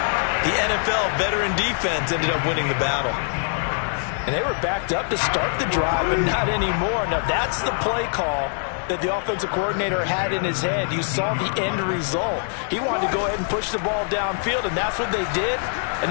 the NFL veteran defense ended up winning the battle. And they were backed up to start the drive, but not anymore. Now, that's the play call that the offensive coordinator had in his head. You saw the end result. He wanted to go ahead and push the ball downfield, and that's what they did.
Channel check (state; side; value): silent; right; 62 dB below the other